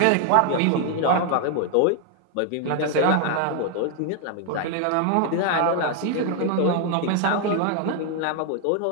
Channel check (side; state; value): both; different; correlation 0.00